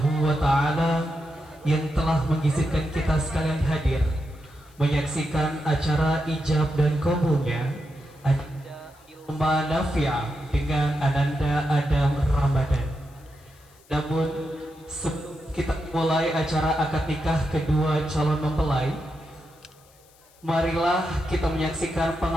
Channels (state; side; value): noise; left; hiss, 29 dB below the sound